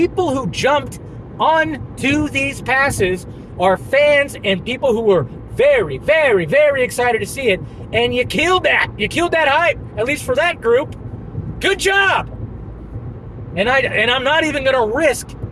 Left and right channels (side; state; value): both; identical; correlation 1.00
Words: who jumped onto these passes are fans and people who were very, very, very excited to see it. And you killed that. You killed that hype, at least for that group. Good job. And I'm not even going to risk